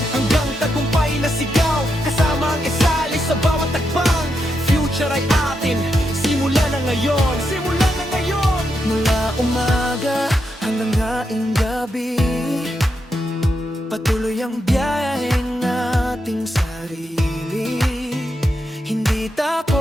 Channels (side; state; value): both; normal; correlation 0.84